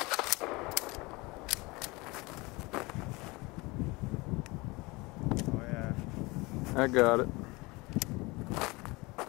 I got it.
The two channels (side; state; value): right; quieter; 24.1 dB